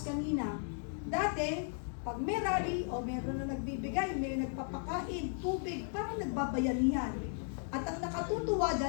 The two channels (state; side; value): silent; right; 54 dB below the other